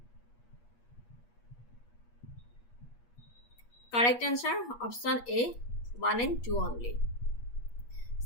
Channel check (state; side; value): late; right; 8.4 ms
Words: Correct answer option A 1 and 2 only.